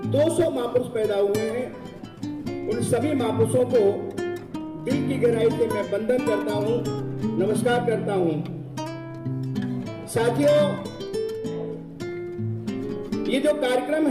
200 महापुरुष पैदा हुए हैं। उन सभी महापुरुषों को दिल की गहराई से मैं वंदन करता हूं, नमस्कार करता हूं। साथियों, ये जो कार्यक्रम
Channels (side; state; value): both; identical; correlation 1.00